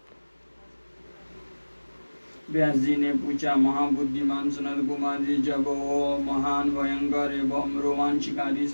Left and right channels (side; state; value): both; inverted; correlation -1.00